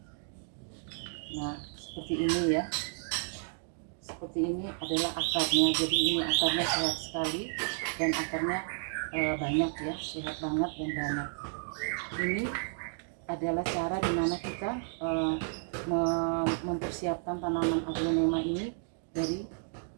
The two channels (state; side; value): silent; left; 56 dB below the other